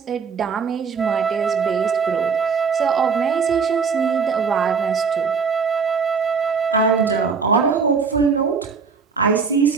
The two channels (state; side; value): quieter; left; 5.6 dB